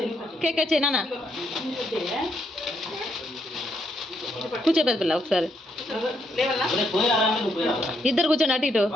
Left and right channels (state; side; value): normal; both; correlation 0.76